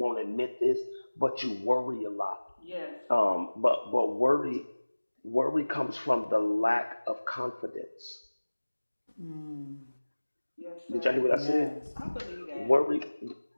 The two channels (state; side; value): inverted; both; correlation -1.00